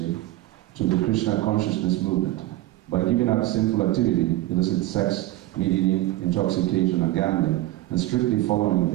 to the Krishna consciousness movement. By giving up sinful activity, illicit sex, meat eating, intoxication, and gambling, and strictly following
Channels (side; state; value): left; quieter; 16.4 dB